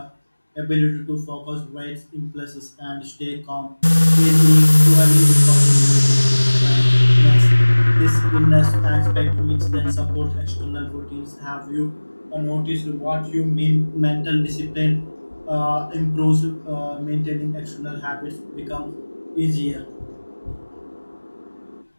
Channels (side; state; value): both; inverted; correlation -1.00